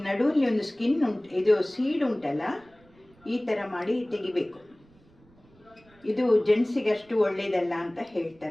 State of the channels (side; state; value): right; noise; rumble, 29 dB below the sound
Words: ನಡುವಲ್ಲಿ ಒಂದು ಸ್ಕಿನ್ ಇದು ಸೀಡ್ ಉಂಟಲ್ಲ, ಈ ಥರ ಮಾಡಿ ತೆಗಿಬೇಕು. ಇದು ಜೆಂಟ್ಸಿಗೆ ಅಷ್ಟು ಒಳ್ಳೆಯದಲ್ಲ ಅಂತ